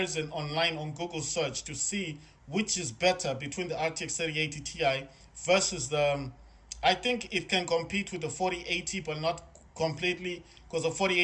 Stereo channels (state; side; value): identical; both; correlation 1.00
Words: online on Google search to see which is better between the RTX 3080 Ti versus I think it can compete with the 4080, but not completely because the